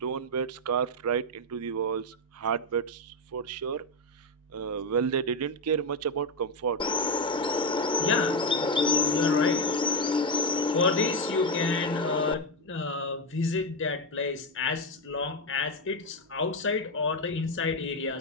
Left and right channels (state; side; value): normal; both; correlation 0.09